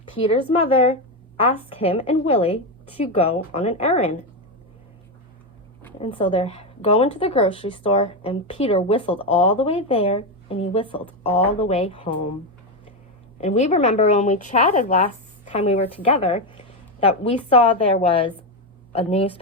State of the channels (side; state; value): both; normal; correlation 0.10